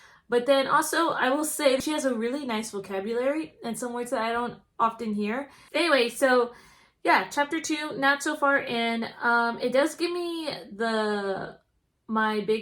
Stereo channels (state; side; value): identical; both; correlation 1.00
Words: but then also I will say she has a really nice vocabulary and some words that I don't often hear. Anyway, so yeah, chapter 2, not so far in. It does give me my